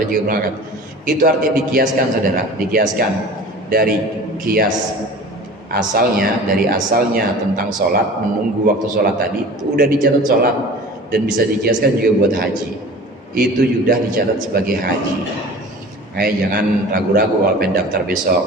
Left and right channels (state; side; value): normal; both; correlation 0.40